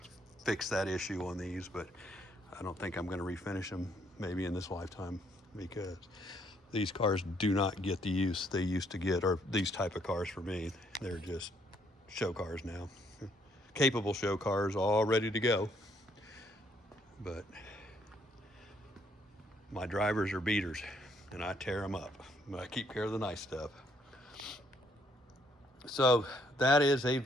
fix that issue on these, but I don't think I'm going to refinish them maybe in this lifetime, because these cars do not get the use they used to get, or these type of cars for me. They're just show cars now, capable show cars, all ready to go. But my drivers are beaters, and I tear them up, but I keep care of the nice stuff. So that is a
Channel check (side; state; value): both; normal; correlation 0.69